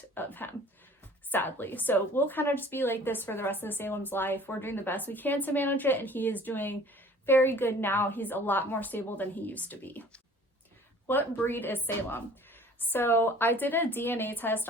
of him, sadly. So we'll kind of just be like this for the rest of Salem's life. We're doing the best we can to manage it, and he is doing very good now. He's a lot more stable than he used to be. What breed is Salem? So I did a DNA test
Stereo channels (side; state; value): both; normal; correlation 0.50